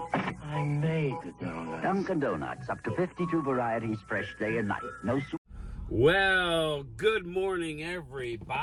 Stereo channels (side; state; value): both; identical; correlation 1.00